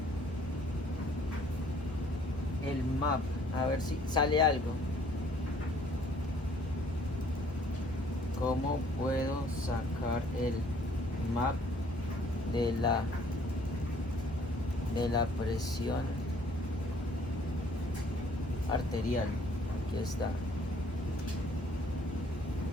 map, a ver si sale algo. ¿Cómo puedo sacar el map de la presión arterial? Aquí está.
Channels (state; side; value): normal; both; correlation 0.59